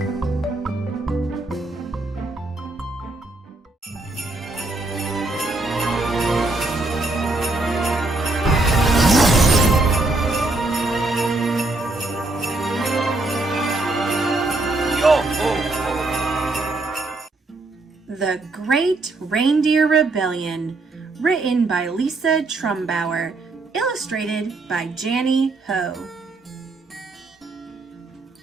The Great Reindeer Rebellion, written by Lisa Trumbauer, illustrated by Janny Ho.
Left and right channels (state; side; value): quieter; left; 3.1 dB